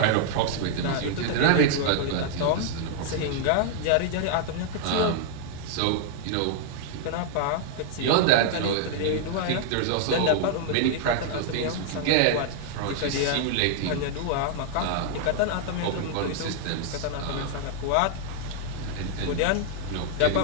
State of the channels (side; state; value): both; different; correlation -0.01